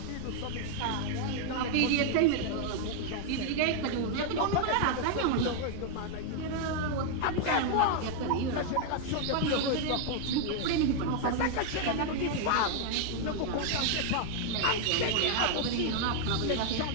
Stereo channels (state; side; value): different; both; correlation 0.00